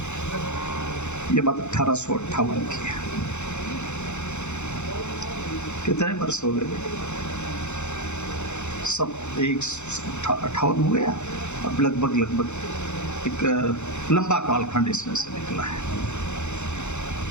ये बात 1858 की है। कितने वर्ष हो गए? सब 158 हो गया। अब लगभग एक लंबा कालखंड इसमें से निकला है।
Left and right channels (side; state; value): right; late; 0.83 ms